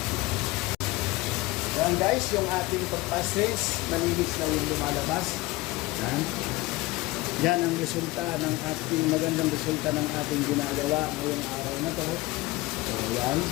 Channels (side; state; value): right; quieter; 20.6 dB